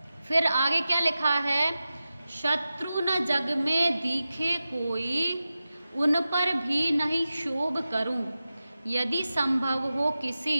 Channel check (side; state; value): both; inverted; correlation -0.93